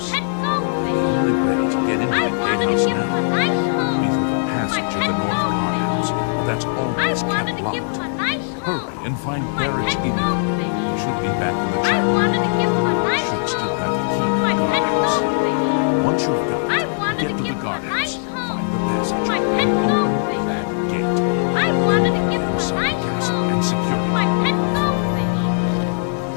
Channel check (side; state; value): right; silent; 61 dB below the other